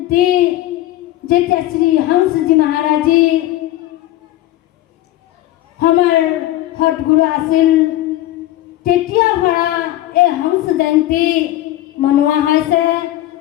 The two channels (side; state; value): right; quieter; 14.8 dB